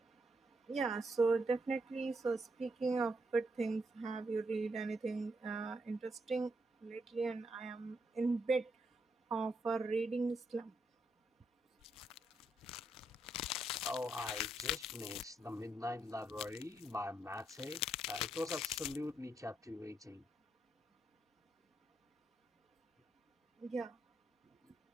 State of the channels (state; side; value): normal; both; correlation 0.79